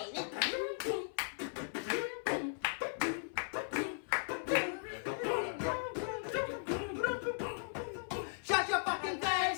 it? Shut your fucking face,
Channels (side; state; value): right; silent; 53 dB below the other